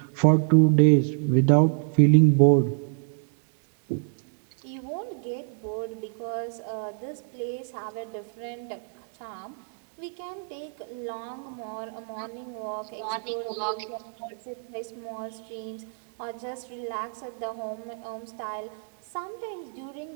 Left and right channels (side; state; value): left; silent; 60 dB below the other